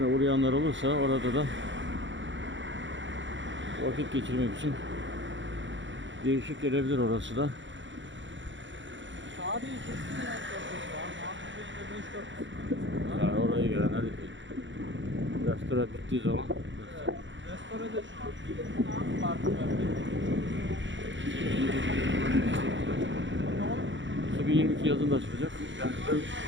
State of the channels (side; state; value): left; late; 0.54 ms